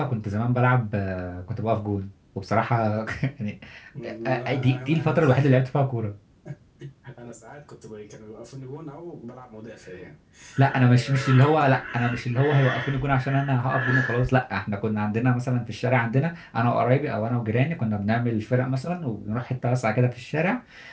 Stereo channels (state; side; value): identical; both; correlation 1.00